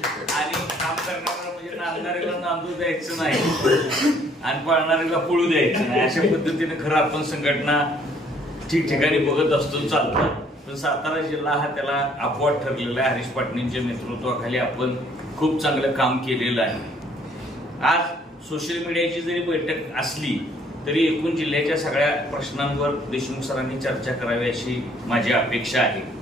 आणि काम करणारा म्हणजे नांदणाऱ्याला नांदू द्यायचं नाही आणि पळणाऱ्याला पळू द्यायचं नाही, अशा पद्धतीने खरं आपण संघटना ठिकठिकाणी बघत असतो चालतात. पण सातारा जिल्हा हा त्याला अपवाद ठरलेला आहे. हरीश पाटणेंच्या नेतृत्वाखाली आपण खूप चांगलं काम केलेलं आहे. आज सोशल मीडियाची जरी बैठक असली तरी एकूण जिल्ह्याच्या सगळ्या प्रश्नांवर देशमुख सरांनी चर्चा करावी अशी माझी अपेक्षा आहे.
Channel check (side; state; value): both; normal; correlation 0.62